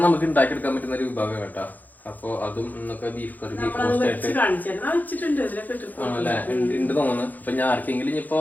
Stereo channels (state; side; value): late; right; 0.083 ms